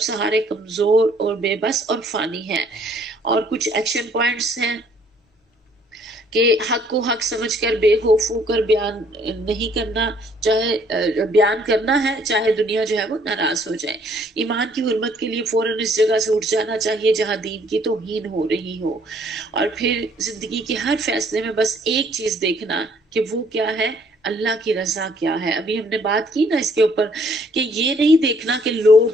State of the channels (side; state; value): both; normal; correlation 0.63